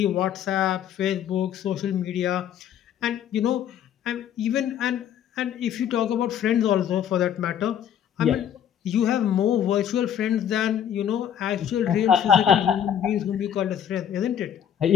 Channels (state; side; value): quieter; right; 9.5 dB